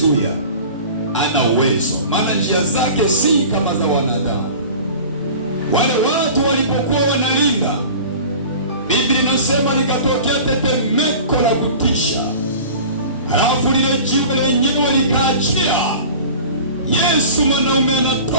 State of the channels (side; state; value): both; inverted; correlation -0.39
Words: Ana uwezo, maana njia zake si kama za wanadamu. Wale watu walipokuwa wanalinda, Biblia inasema likatokea tetemeko la kutisha, halafu lile jiwe lenyewe likaachia. Yesu mwanaume